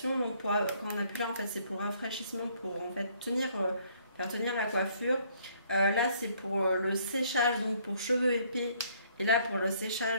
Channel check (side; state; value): both; inverted; correlation -0.64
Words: Donc quand on appuie là, en fait, c'est pour rafraîchissement, pour en fait faire tenir la coiffure. Là c'est pour le séchage, donc pour cheveux épais, et là pour le